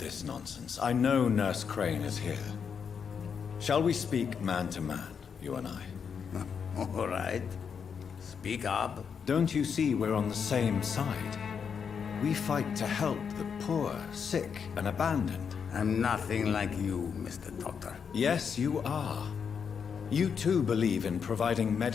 nonsense. I know Nurse Crane is here. Shall we speak man to man, you and I? All right. Speak up. Don't you see we're on the same side? We fight to help the poor, sick, and abandoned. I'm nothing like you, Mr. Doctor. Yes, you are. You too believe in providing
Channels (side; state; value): right; quieter; 6.7 dB